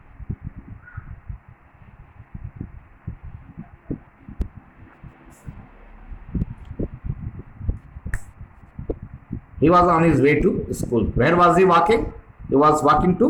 He was on his way to school. Where was he walking? He was walking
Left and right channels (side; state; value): both; identical; correlation 1.00